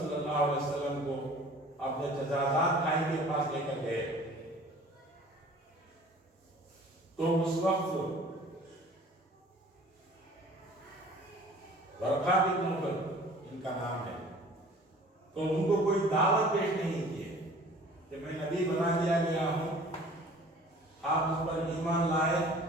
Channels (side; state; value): both; normal; correlation 0.48